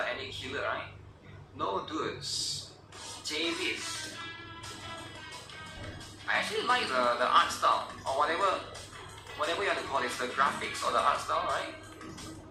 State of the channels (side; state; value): both; identical; correlation 1.00